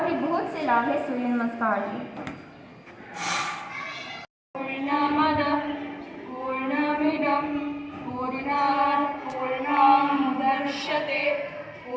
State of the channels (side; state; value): both; identical; correlation 1.00